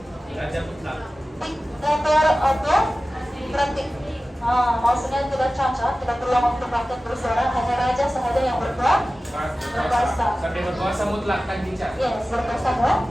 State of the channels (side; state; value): both; normal; correlation 0.96